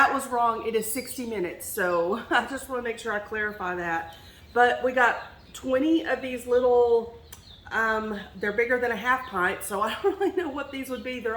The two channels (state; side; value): identical; both; correlation 1.00